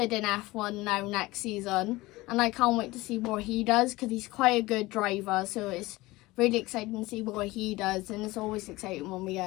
in F1 now next season, and I can't wait to see what he does because he's quite a good driver, so it's really exciting to see what he does, and it's always exciting when we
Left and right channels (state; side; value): quieter; right; 20.0 dB